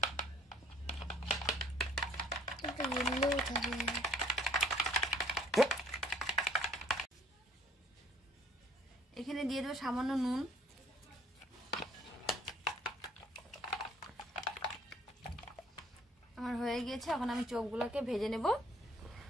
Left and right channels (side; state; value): both; normal; correlation 0.59